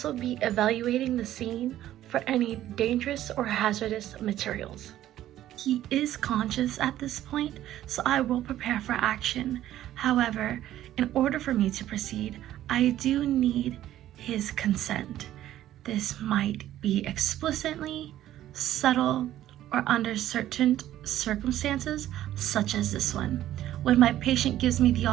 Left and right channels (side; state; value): left; quieter; 13.0 dB